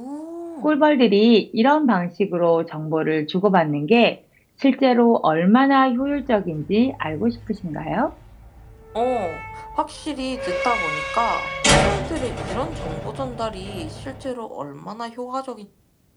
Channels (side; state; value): both; identical; correlation 1.00